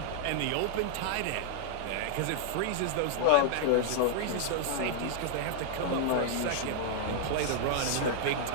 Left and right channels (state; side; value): different; both; correlation -0.01